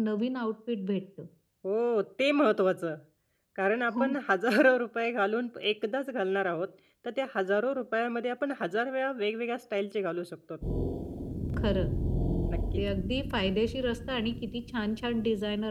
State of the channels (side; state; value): both; identical; correlation 1.00